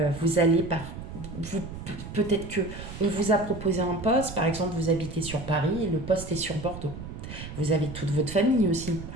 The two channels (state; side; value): noise; right; rumble, 10 dB below the sound